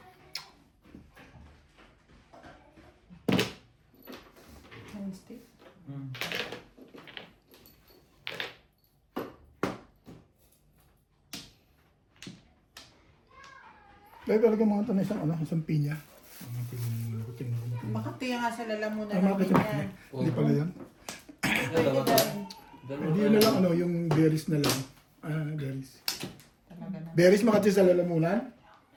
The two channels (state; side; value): identical; both; correlation 1.00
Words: Dahil talaga mga ito na isang pinya. Tingnan mo, tingnan ko. Bakit tiya nga sa lalamunan Tama ka namin sa yan? Hindi pala yan. Dalawa tayo. Hindi yun na lang yung berries na lang. Berries. Talaga na. Berries makati sa lalamunan?